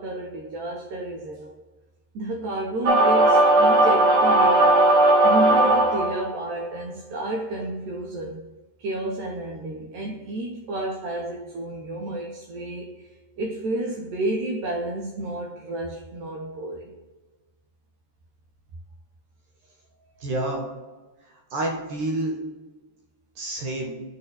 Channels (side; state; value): left; late; 13 ms